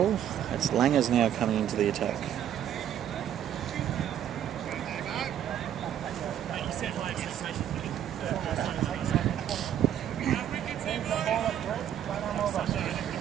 it's Langers now coming into the attack.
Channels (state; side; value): quieter; left; 10.3 dB